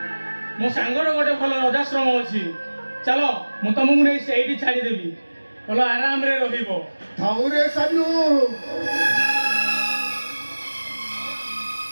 ମୋ ସାଙ୍ଗର ଗୋଟେ ଭଲ ରଜାଶ୍ରମ ଅଛି, ଚାଲ ମୁଁ ତମକୁ ନେଇ ସେଇଠି ଛାଡ଼ିଦେବି, ଭଲ ଆରାମରେ ରହିବ। ଥାଉରେ ସାନୁ,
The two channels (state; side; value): inverted; both; correlation -1.00